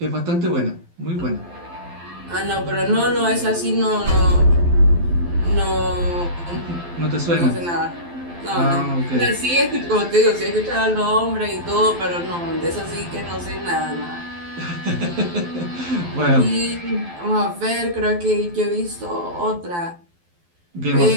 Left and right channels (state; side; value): late; left; 12 ms